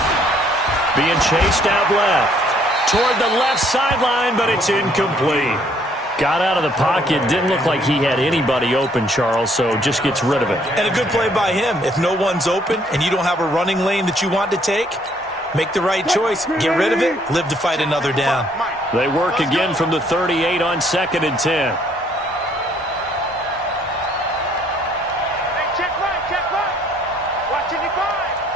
Being chased out left. Toward the left sideline, but it's incomplete. Got out of the pocket. Didn't look like he had anybody open, Charles, so just gets rid of it. And a good play by him. If no one's open and you don't have a running lane that you want to take, make the right choice. Get rid of it. Live to fight another down. They work again from the 38 on 2nd and 10.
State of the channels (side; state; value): both; normal; correlation 0.65